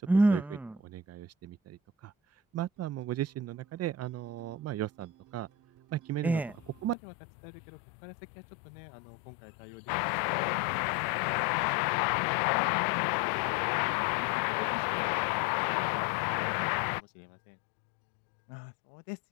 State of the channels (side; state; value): right; drops out; at 7.0 s